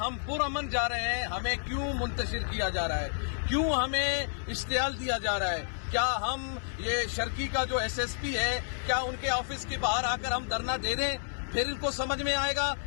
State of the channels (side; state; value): right; silent; 57 dB below the other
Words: پرامن جا رہے ہیں. ہمیں کیوں منتشر کیا جا رہا ہے؟ کیوں ہمیں اشتعال دیا جا رہا ہے؟ کیا ہم یہ شرکی کا جو ایس ایس پی ہے، کیا ان کے آفس کے باہر آ کر ہم دھرنا دے دیں؟ پھر ان کو سمجھ میں آئے گا.